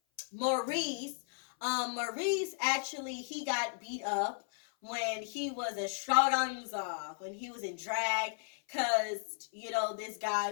Maurice actually, he got beat up when he was a extravaganza, when he was in drag, because, this guy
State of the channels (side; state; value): right; silent; 55 dB below the other